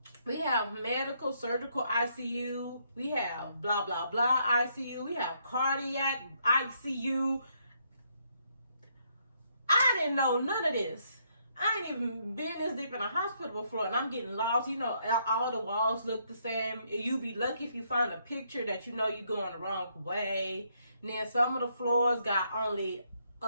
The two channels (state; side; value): inverted; both; correlation -0.73